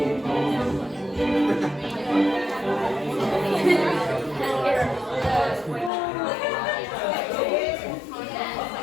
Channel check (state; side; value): drops out; right; at 5.9 s